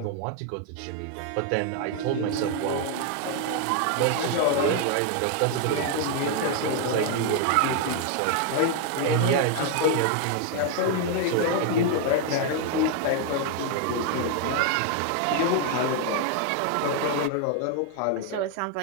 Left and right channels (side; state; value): both; different; correlation 0.01